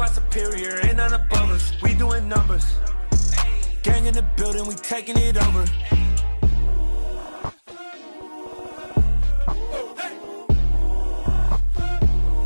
superior, ain't none above us. We doing numbers. Gang in the building, we taking it over.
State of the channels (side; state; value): both; inverted; correlation -1.00